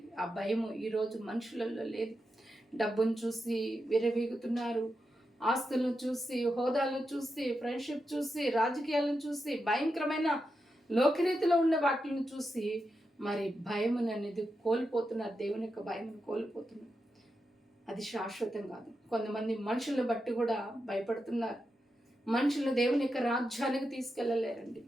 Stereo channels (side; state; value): both; normal; correlation 0.87